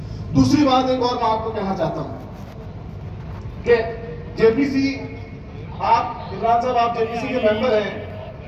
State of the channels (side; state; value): both; identical; correlation 1.00